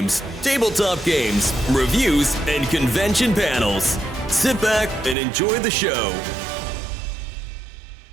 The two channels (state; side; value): drops out; left; at 5.2 s